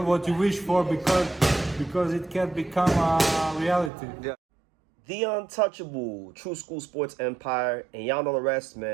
what you wish for because it can become a reality. Yeah. The untouchable true school sports empire, and y'all know the rest,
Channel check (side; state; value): left; drops out; at 3.9 s